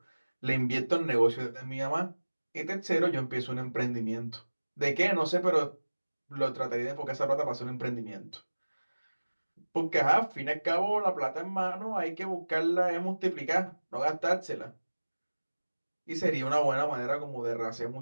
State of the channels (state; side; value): inverted; both; correlation -1.00